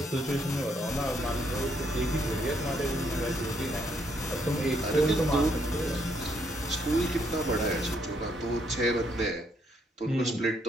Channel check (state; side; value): normal; both; correlation 0.72